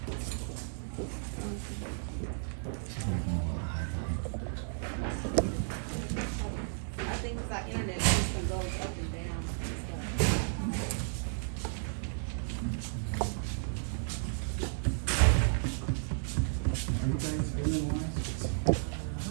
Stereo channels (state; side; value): silent; left; digital silence